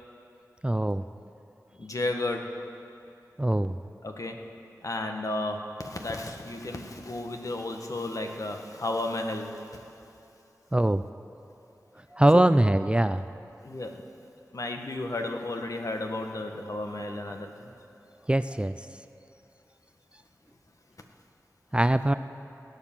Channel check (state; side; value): normal; both; correlation 0.92